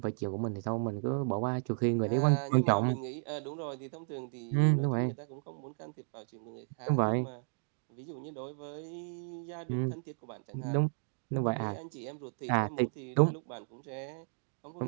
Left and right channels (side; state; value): left; silent; digital silence